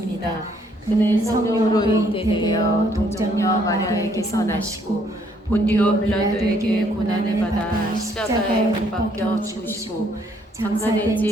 그는 성령으로 잉태되어 동정녀 마리아에게서 나시고 본디오 빌라도에게 고난을 받아 십자가에 못 박혀 죽으시고 장사된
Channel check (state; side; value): normal; both; correlation 0.67